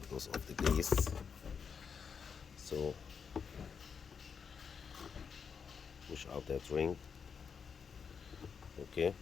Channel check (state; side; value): quieter; right; 6.3 dB